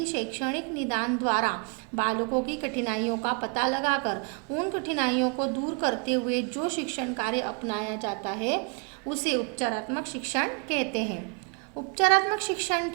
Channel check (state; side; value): quieter; left; 35.1 dB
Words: शैक्षणिक निदान द्वारा बालकों की कठिनाइयों का पता लगाकर उन कठिनाइयों को दूर करते हुए जो शिक्षण कार्य अपनाया जाता है उसे उपचारात्मक शिक्षण कहते हैं। उपचारात्मक शिक्षण